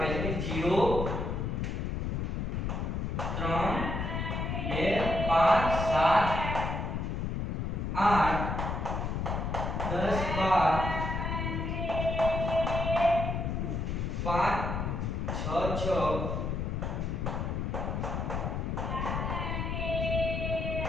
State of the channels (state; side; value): noise; left; rumble, 1 dB below the sound